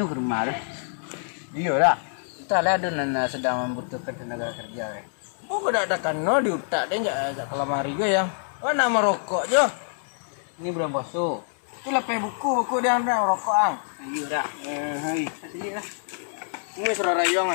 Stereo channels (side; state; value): right; silent; 61 dB below the other